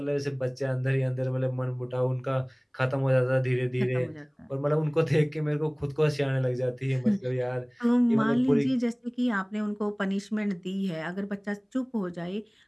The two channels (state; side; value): identical; both; correlation 1.00